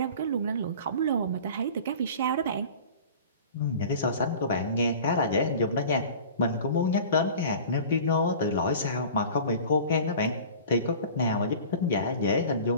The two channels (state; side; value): inverted; both; correlation -0.41